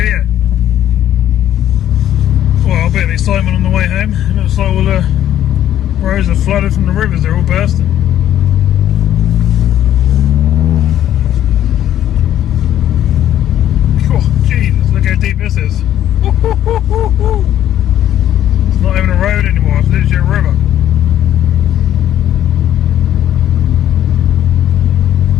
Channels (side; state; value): right; quieter; 11.6 dB